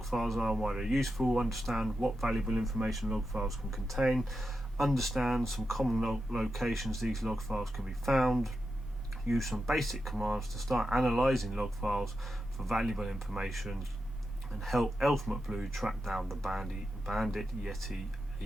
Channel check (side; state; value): both; normal; correlation 0.88